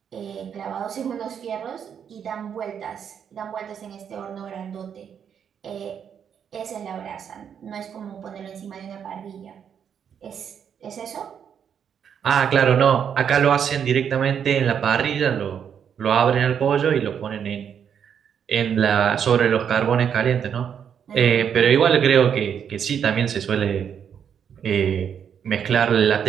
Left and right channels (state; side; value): quieter; left; 8.0 dB